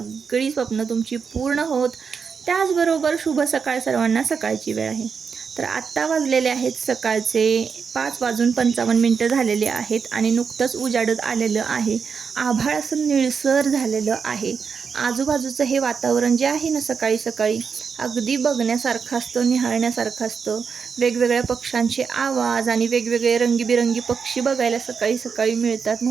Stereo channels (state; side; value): quieter; left; 6.0 dB